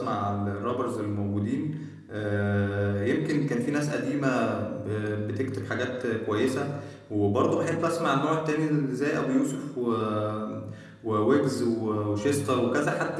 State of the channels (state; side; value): identical; both; correlation 1.00